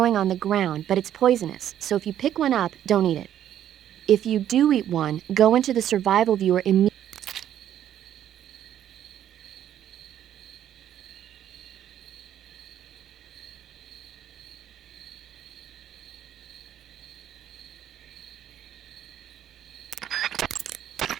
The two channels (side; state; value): left; quieter; 10.9 dB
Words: on the ground, but it's poisonous, so if you pick one up, don't eat it. If you do eat one, go into the survival viewer immediately.